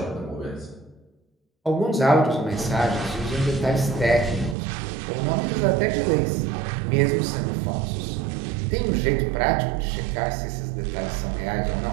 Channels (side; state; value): left; drops out; at 4.5 s